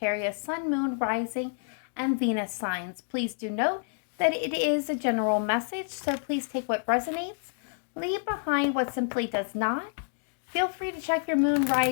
Sun, Moon, Rising, and Venus signs. Please do note that it is a general message, so please take what resonates, leave behind what simply does not. Feel free to check your Moon,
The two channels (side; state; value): right; silent; digital silence